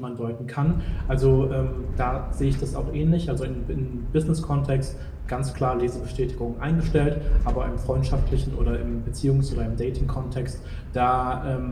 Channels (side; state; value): both; identical; correlation 1.00